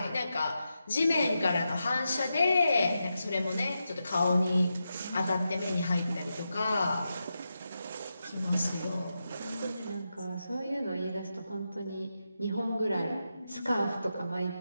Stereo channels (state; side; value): inverted; both; correlation -0.88